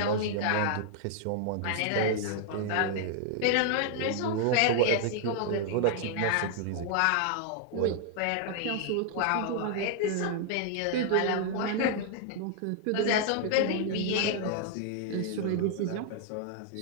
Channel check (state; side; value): different; both; correlation 0.00